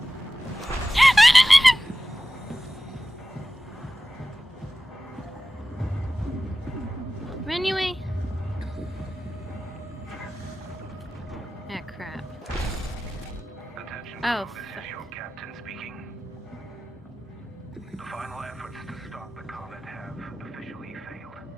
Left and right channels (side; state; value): both; normal; correlation 0.95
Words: Run away! Ah, crap. Attention Oh, crew, this is your captain speaking. The final efforts to stop the comet have officially failed.